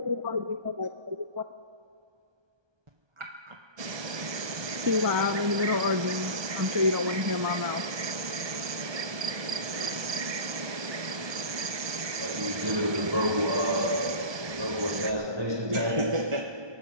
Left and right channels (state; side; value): late; left; 1.2 ms